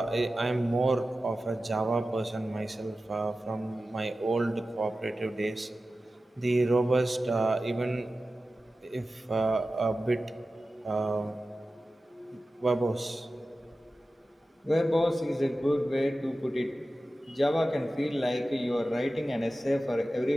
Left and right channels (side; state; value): both; normal; correlation 0.94